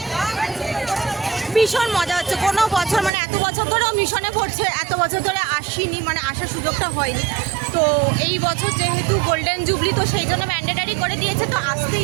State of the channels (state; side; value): drops out; left; at 3.1 s